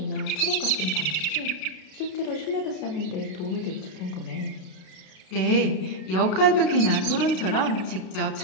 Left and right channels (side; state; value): right; late; 33 ms